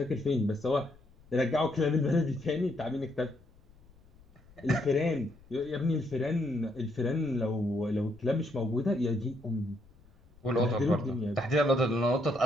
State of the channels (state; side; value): noise; left; rumble, 27 dB below the sound